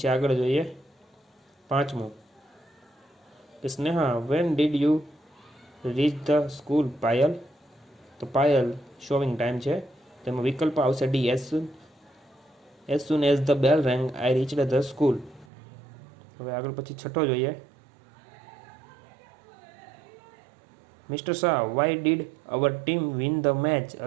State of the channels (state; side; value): drops out; left; at 15.5 s